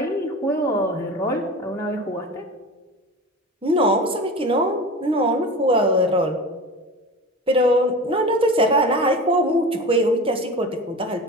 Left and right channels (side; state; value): both; normal; correlation 0.32